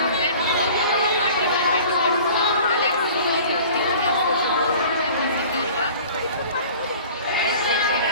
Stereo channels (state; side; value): inverted; both; correlation -0.45